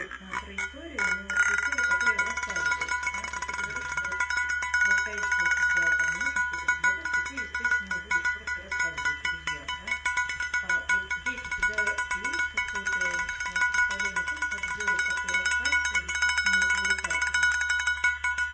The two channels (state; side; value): identical; both; correlation 1.00